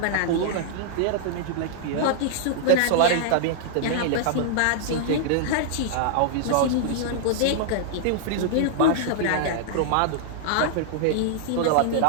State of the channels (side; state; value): both; different; correlation -0.01